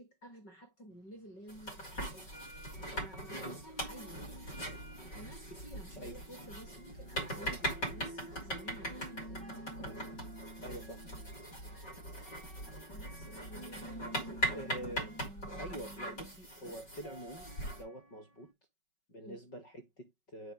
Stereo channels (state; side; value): late; right; 5.3 ms